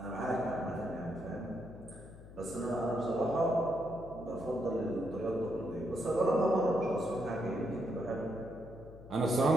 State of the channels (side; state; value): left; noise; hum, 17 dB below the sound